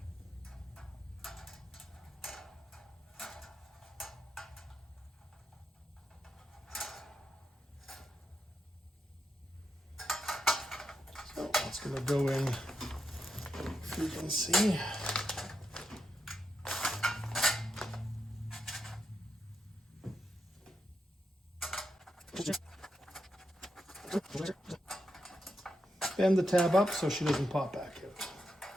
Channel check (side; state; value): both; normal; correlation 0.84